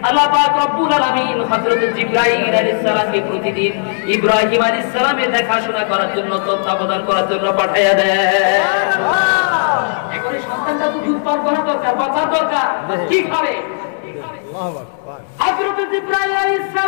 আল্লাহ পাক রব্বুল আলামিন হযরত জিবরাইল আলাইহিস সালামকে প্রতিদিন ইব্রাহিম আলাইহিস সালামের দেখাশোনা করার জন্য, তত্ত্বাবধান করার জন্য পাঠায়া দেয়। এখন এই সন্তানটা তো দুধ পান করা দরকার, বাঁচা দরকার, কি খাবে? হযরত জিবরাইল আলাইহিস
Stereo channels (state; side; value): silent; right; digital silence